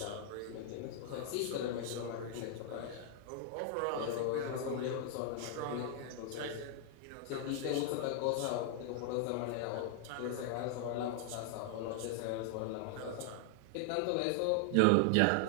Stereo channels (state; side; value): different; both; correlation 0.00